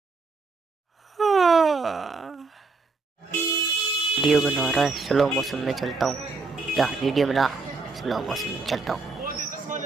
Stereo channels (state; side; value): quieter; left; 4.0 dB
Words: वीडियो बना रहा है, स्लो मोशन में चलता हूँ। या वीडियो बना, स्लो मोशन में चलता हूँ।